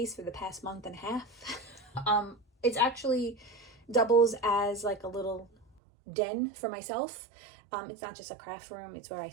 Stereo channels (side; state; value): left; drops out; at 5.7 s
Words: for the past month and a half. It's actually doubles as like a little den for myself. It's not just a craft room, it's where I